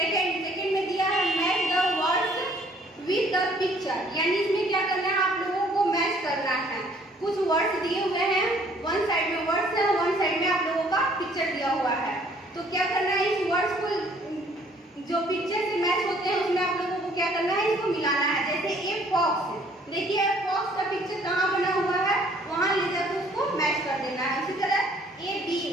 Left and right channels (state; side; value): normal; both; correlation 0.60